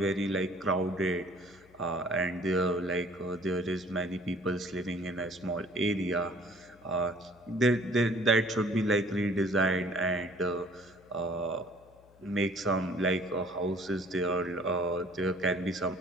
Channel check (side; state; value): left; noise; hum, 27 dB below the sound